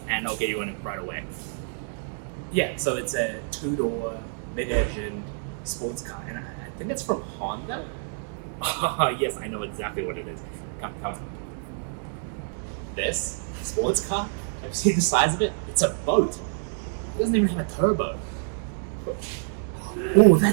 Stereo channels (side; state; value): left; silent; digital silence